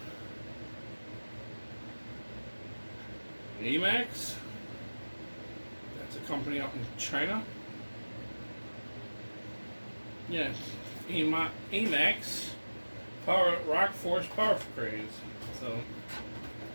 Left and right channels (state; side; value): inverted; both; correlation -1.00